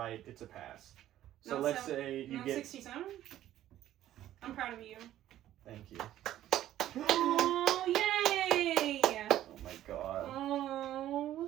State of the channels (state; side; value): quieter; left; 12.9 dB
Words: it's a pass. So let's say you get... 67? I'm proud of you. Thank you. Oh, yay! Oh my god.